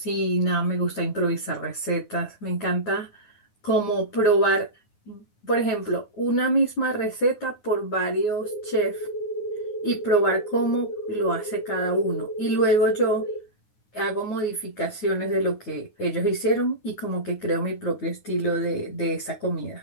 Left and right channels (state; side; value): late; right; 9.6 ms